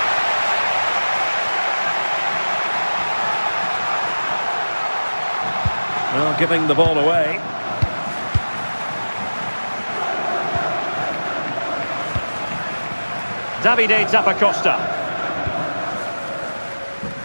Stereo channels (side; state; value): both; inverted; correlation -1.00